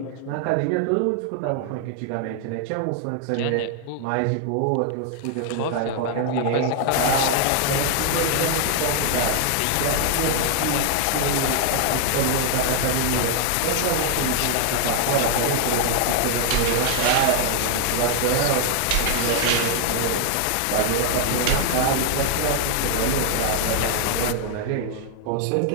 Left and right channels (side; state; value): both; different; correlation 0.00